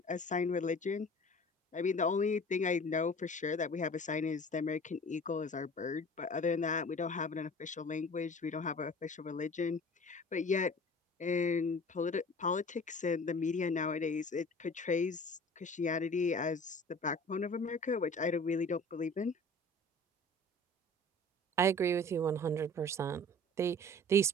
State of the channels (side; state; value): both; normal; correlation 0.44